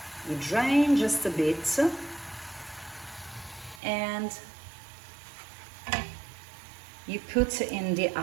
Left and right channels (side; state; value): left; drops out; at 3.8 s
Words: you drain just a bit and you put in the